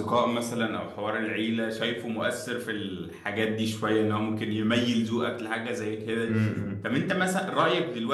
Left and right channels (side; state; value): both; identical; correlation 1.00